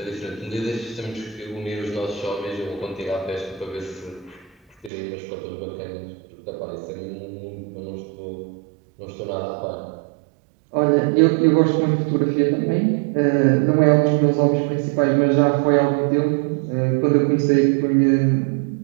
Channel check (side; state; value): left; drops out; at 4.9 s